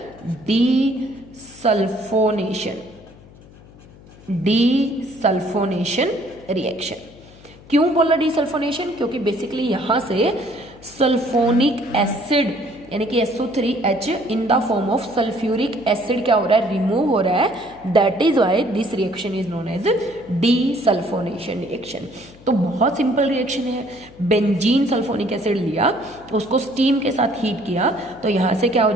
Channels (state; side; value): noise; left; hum, 22 dB below the sound